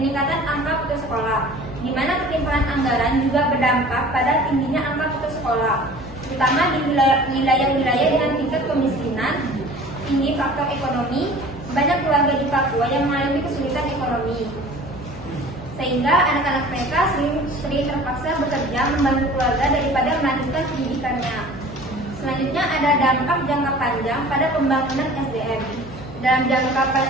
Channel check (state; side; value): noise; left; hum, 16 dB below the sound